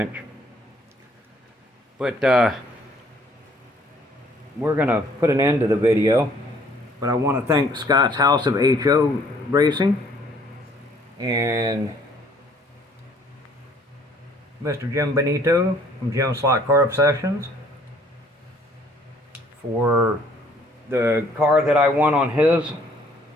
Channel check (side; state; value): both; normal; correlation 0.60